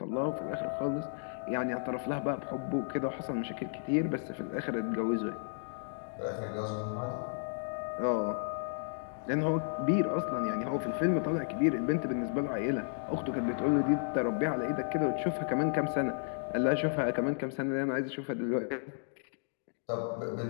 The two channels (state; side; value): silent; right; digital silence